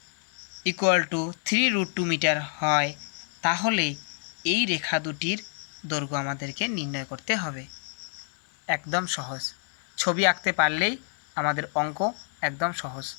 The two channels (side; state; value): right; silent; 60 dB below the other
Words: equal to 3√2 metre হয়, তাহলে এই রেখা দুটির দৈর্ঘ্য আমাদেরকে নির্ণয় করতে হবে। একদম সহজ, ছবি আঁকতে পারলেই আমাদের অঙ্ক একদম সহজ।